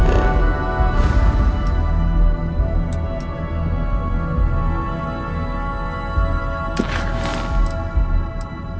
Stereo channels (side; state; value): both; identical; correlation 1.00